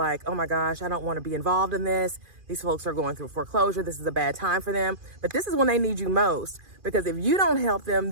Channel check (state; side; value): late; left; 2.4 ms